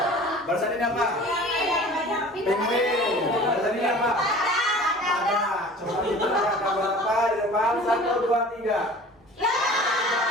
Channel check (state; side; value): normal; both; correlation 0.43